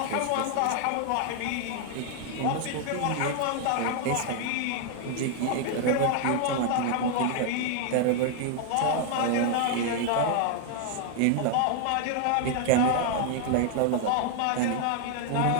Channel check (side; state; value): both; different; correlation 0.00